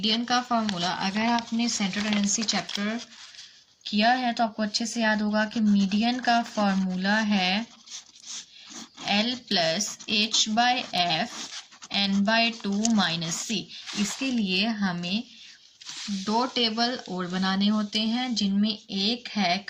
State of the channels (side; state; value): both; identical; correlation 1.00